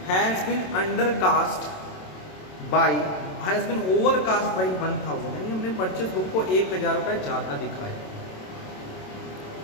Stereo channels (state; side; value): late; right; 27 ms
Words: has been undercast by has been overcast by 1000, यानी हमने परचेज बुक को 1000 रुपए ज्यादा दिखाया।